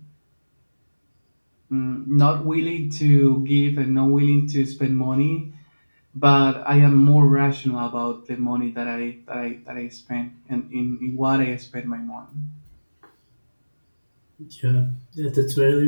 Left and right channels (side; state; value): both; inverted; correlation -1.00